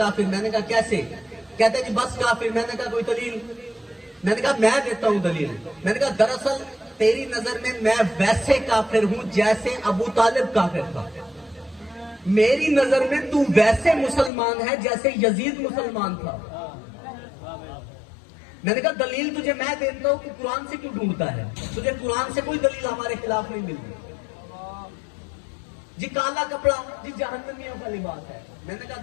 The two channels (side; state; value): right; drops out; at 14.3 s